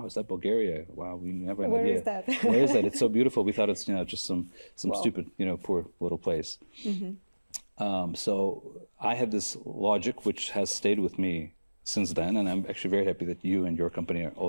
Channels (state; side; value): inverted; both; correlation -1.00